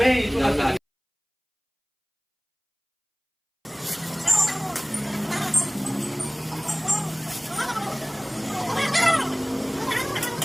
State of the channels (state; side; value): identical; both; correlation 1.00